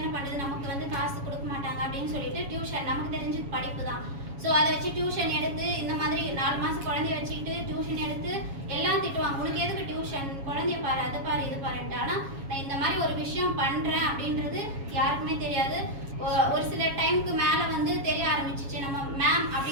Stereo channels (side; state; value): left; late; 7.3 ms